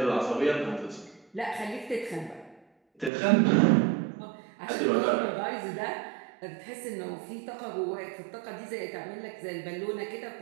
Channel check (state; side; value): drops out; left; at 3.1 s